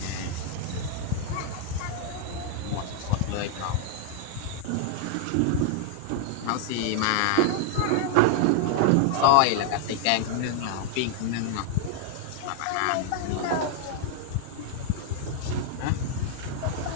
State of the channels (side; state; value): both; different; correlation 0.00